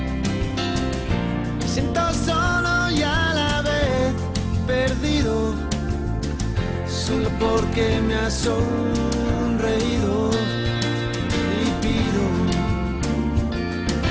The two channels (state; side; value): identical; both; correlation 1.00